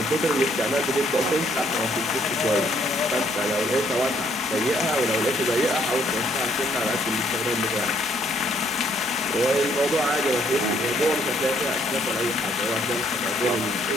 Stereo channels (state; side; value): normal; both; correlation 0.67